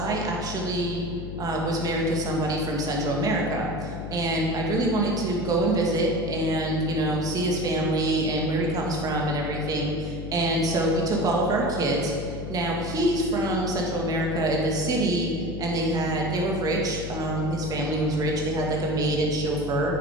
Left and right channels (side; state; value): left; noise; hum, 8 dB below the sound